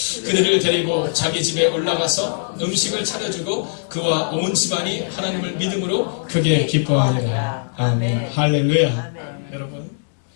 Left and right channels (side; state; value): right; silent; digital silence